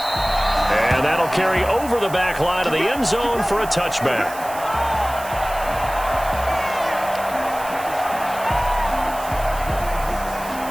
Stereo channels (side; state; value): right; noise; hiss, 15 dB below the sound